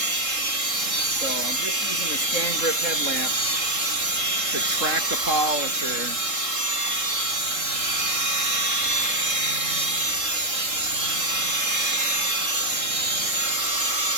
So I'm just using the scan grip headlamp to track the polisher.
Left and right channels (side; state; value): left; late; 3.7 ms